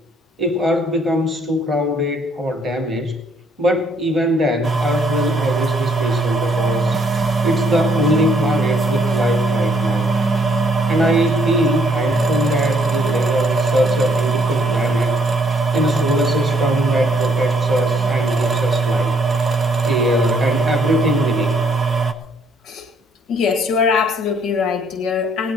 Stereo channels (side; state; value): both; normal; correlation 0.67